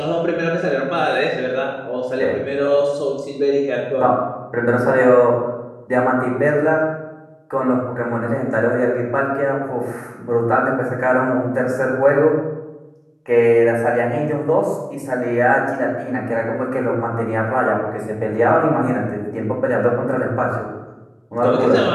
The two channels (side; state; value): both; identical; correlation 1.00